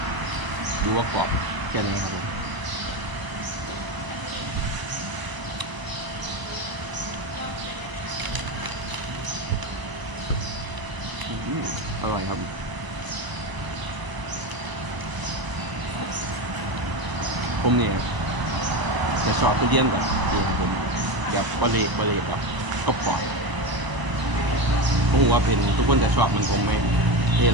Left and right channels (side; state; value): left; late; 1.0 ms